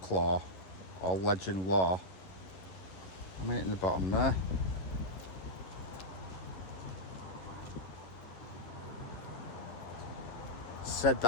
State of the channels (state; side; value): late; right; 11 ms